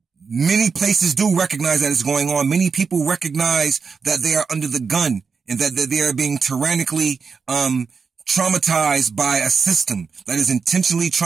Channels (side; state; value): left; quieter; 5.4 dB